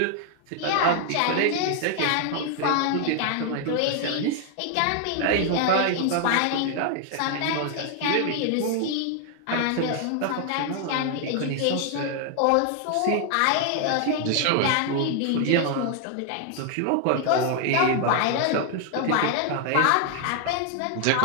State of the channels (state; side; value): different; both; correlation 0.00